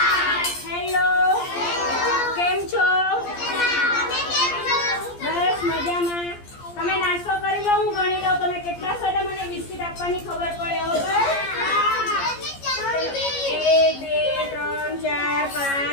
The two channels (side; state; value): right; late; 14 ms